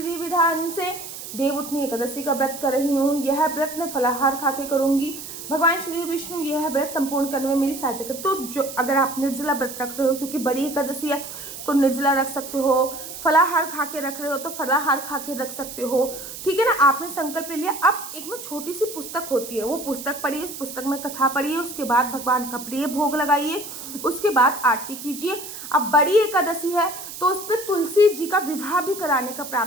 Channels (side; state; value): right; noise; hiss, 11 dB below the sound